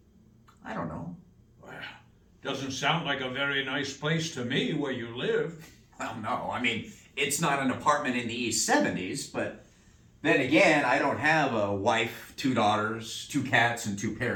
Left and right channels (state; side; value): identical; both; correlation 1.00